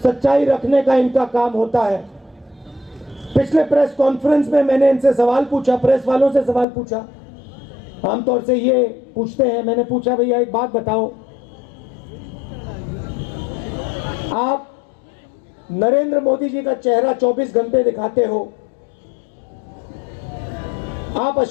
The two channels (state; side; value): drops out; right; at 6.7 s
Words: सच्चाई रखने का इनका काम होता है। पिछले प्रेस कॉन्फ्रेंस में मैंने इनसे सवाल पूछा, प्रेस वालों से सवाल पूछा। आमतौर से ये पूछते हैं, मैंने पूछा, भैया एक बात बताओ, आप नरेंद्र मोदी जी का चेहरा 24 घंटे दिखाते हो, आप